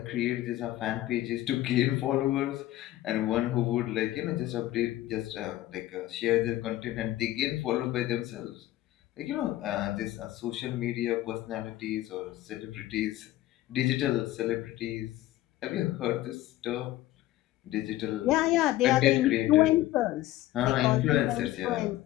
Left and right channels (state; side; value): quieter; right; 15.2 dB